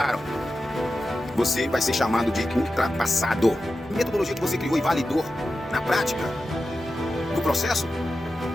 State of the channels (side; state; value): both; normal; correlation 0.92